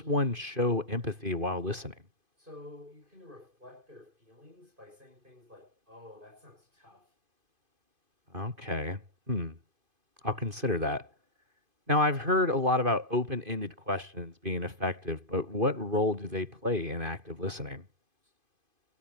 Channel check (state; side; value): late; left; 2.5 ms